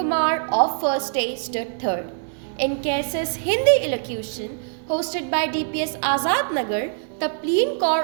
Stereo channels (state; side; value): silent; left; digital silence